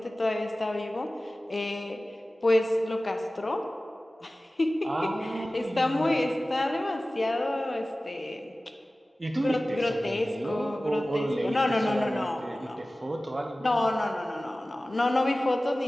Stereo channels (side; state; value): both; normal; correlation 0.97